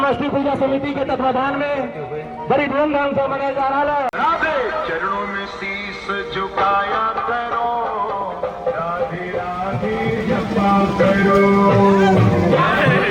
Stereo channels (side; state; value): both; identical; correlation 1.00